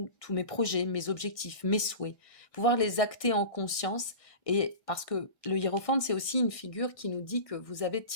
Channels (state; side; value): late; right; 1.5 ms